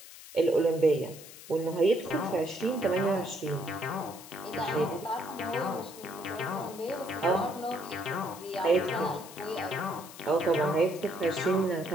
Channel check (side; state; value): left; noise; hiss, 16 dB below the sound